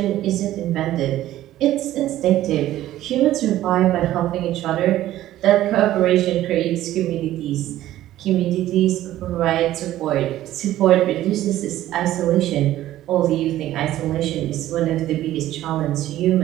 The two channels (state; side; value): quieter; left; 14.0 dB